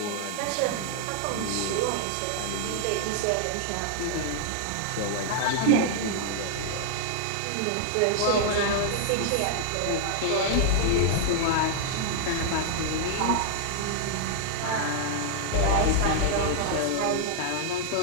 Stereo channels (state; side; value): different; both; correlation 0.00